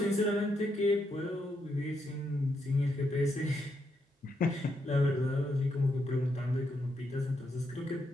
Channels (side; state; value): both; normal; correlation 0.80